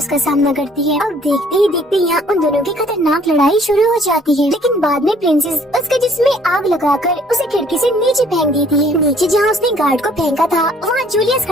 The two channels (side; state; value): both; normal; correlation 0.59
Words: सामना करती है। अब देखते ही देखते यहाँ उन दोनों की खतरनाक लड़ाई शुरू हो जाती है, लेकिन बाद में प्रिंसेस उसके जिस्म में आग लगाकर उसे खिड़की से नीचे फेंक देती है। नीचे जहाँ उसने गार्ड को फेंका था वहाँ जूलियस